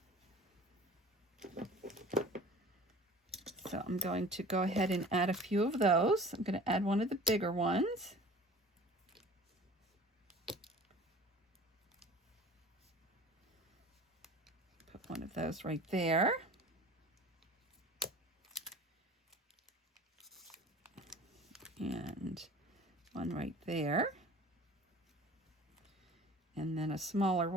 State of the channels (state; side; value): normal; both; correlation 0.43